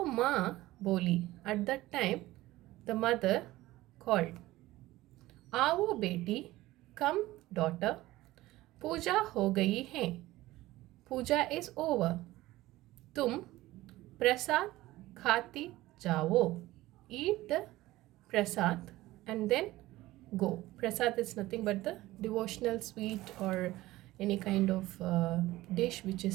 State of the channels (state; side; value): quieter; left; 17.5 dB